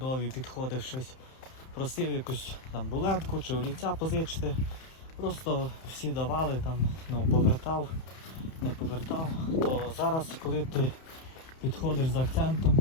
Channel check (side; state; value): right; late; 31 ms